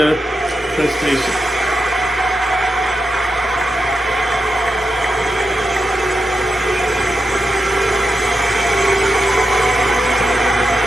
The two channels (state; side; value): normal; both; correlation 0.87